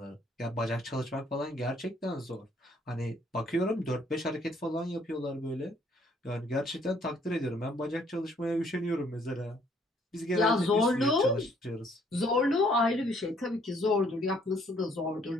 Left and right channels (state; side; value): normal; both; correlation 0.64